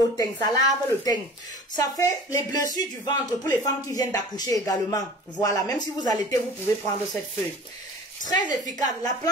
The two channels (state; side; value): normal; both; correlation 0.42